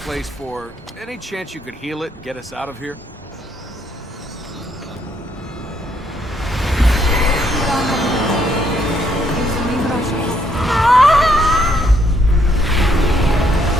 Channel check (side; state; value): both; normal; correlation 0.71